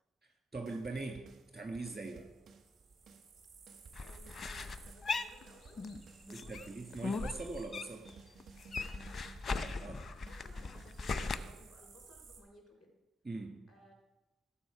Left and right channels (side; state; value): both; normal; correlation 0.84